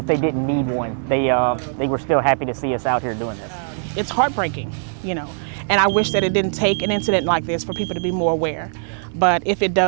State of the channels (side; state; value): left; silent; digital silence